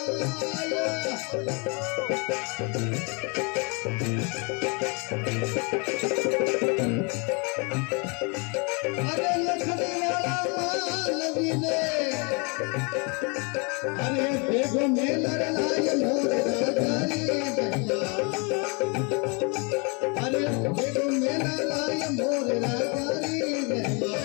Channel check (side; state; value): right; quieter; 32.7 dB